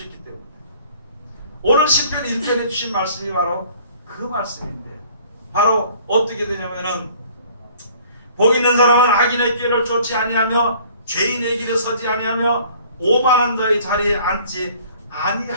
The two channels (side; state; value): both; inverted; correlation -0.53